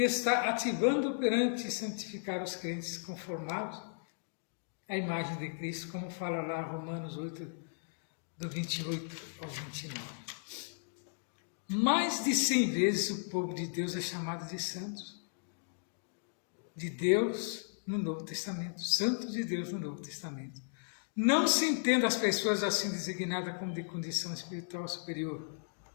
está ativando, operante e santificar os crentes conformados à imagem de Cristo, como fala lá Romanos 8, do 28 ao 29. Mais de 100 vezes o povo de Deus é chamado de santos, de Deus no Novo Testamento, santos de Deus no Novo Testamento. Não se entenda as pessoas assim designadas como de condição espiritual superior,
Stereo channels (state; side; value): silent; right; digital silence